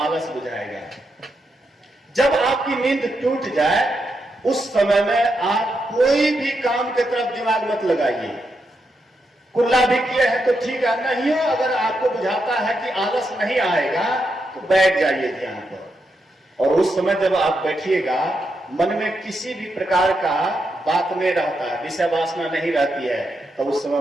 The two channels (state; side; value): normal; both; correlation 0.83